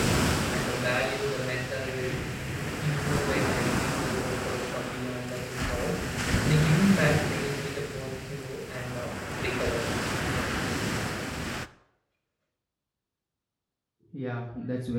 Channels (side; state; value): both; identical; correlation 1.00